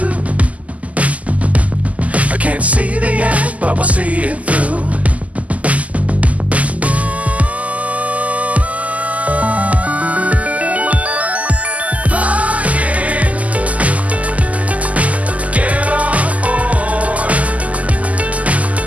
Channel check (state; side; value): late; left; 0.072 ms